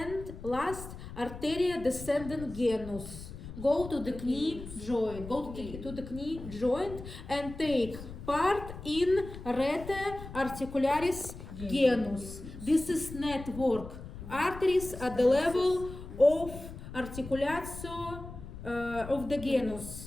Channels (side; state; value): left; noise; rumble, 12 dB below the sound